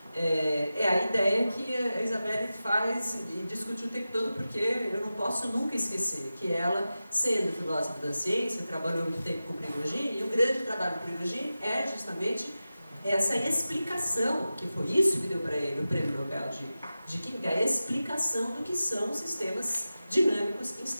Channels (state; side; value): inverted; both; correlation -0.94